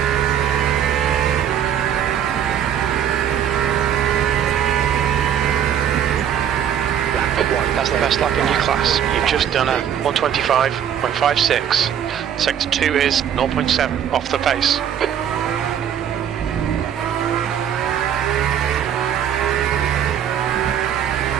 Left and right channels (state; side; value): quieter; left; 9.3 dB